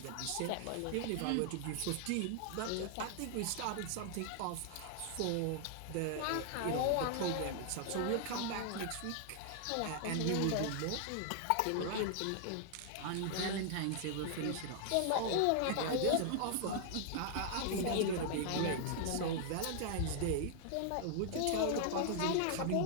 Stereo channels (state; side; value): different; both; correlation 0.00